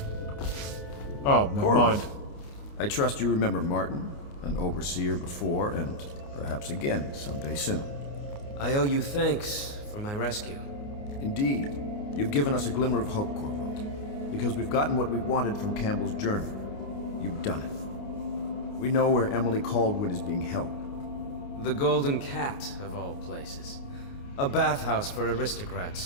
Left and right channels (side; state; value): right; late; 29 ms